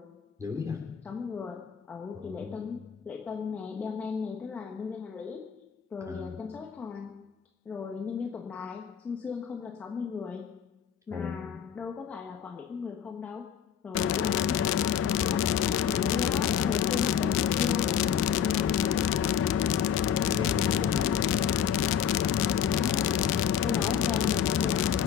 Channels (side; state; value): right; quieter; 8.4 dB